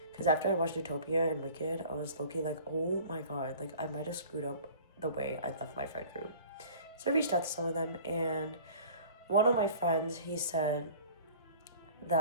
Because after I watched Utopia and Wicked, I was low-key like, oh my god, like, I might have screwed up the way I left my friend group. So I reached out to some of them, and one of my friends, he said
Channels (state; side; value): inverted; both; correlation -0.46